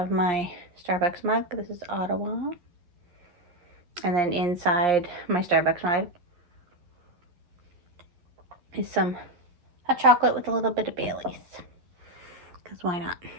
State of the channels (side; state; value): left; late; 11 ms